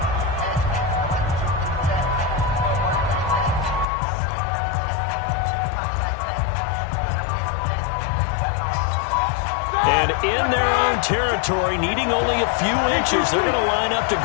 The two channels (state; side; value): drops out; right; at 3.9 s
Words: in their own territory, needing only a few inches. They're going to line up to